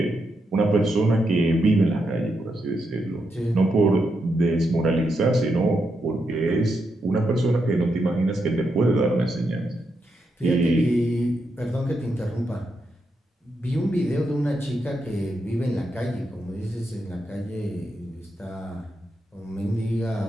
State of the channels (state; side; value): normal; both; correlation 0.83